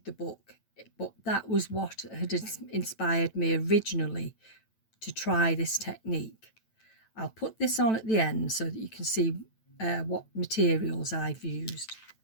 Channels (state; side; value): late; right; 9.0 ms